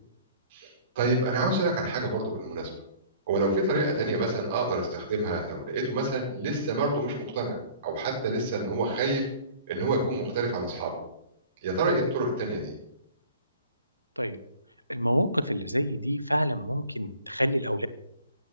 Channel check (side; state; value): both; inverted; correlation -0.48